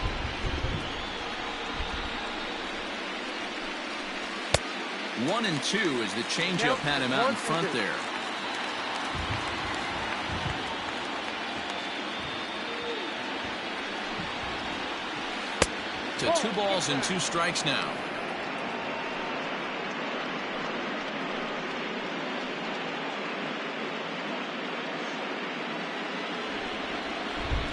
One and 2 as the changeup had him out in front there. To 2 balls and 2 strikes now.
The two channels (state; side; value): identical; both; correlation 1.00